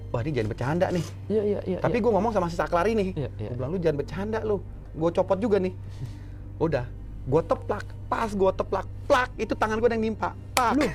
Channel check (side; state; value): both; identical; correlation 1.00